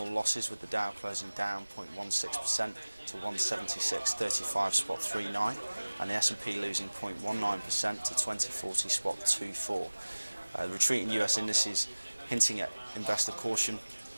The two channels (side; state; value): both; inverted; correlation -1.00